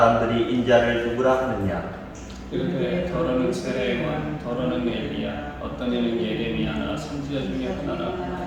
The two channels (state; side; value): identical; both; correlation 1.00